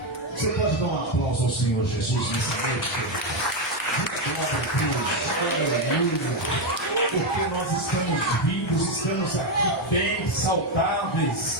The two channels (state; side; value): normal; both; correlation 0.06